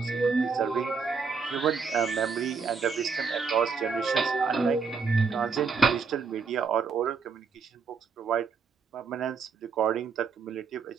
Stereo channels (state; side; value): quieter; left; 5.3 dB